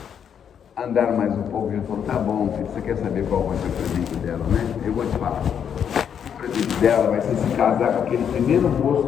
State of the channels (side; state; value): right; quieter; 8.2 dB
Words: andaram mais um pouco. Ele falou, tá bom, filho, você quer saber qual vai ser o presente dela, né? Eu vou te falar. O presente dela vai ser se casar com aquele primeiro moço